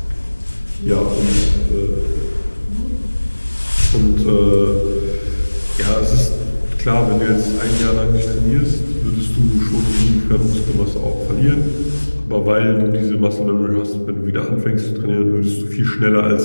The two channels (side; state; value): both; inverted; correlation -1.00